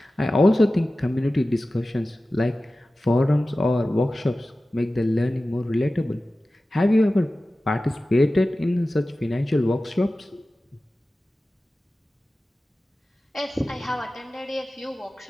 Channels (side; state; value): both; normal; correlation 0.96